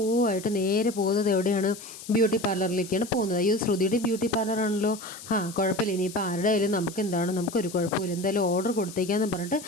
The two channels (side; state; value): left; noise; hiss, 15 dB below the sound